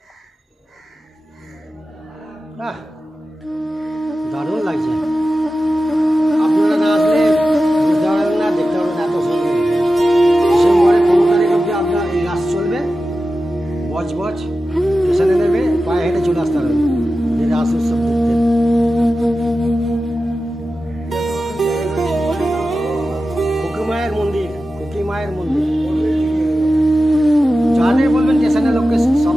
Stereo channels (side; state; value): both; normal; correlation 0.93